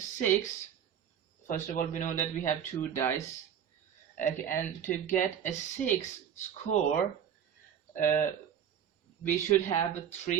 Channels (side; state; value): left; quieter; 8.9 dB